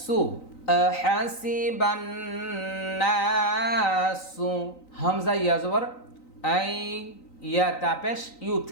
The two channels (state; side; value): late; right; 3.9 ms